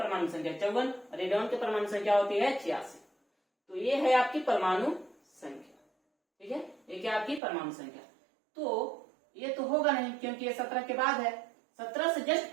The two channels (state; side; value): drops out; left; at 7.4 s